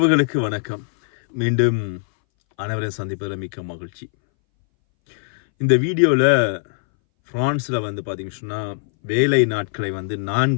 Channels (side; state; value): right; silent; 62 dB below the other